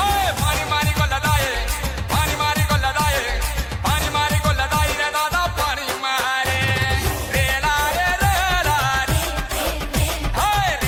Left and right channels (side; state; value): both; identical; correlation 1.00